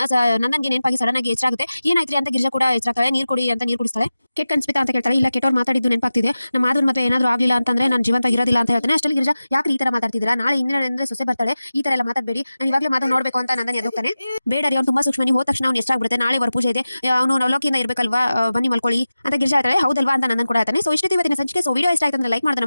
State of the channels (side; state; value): both; inverted; correlation -0.95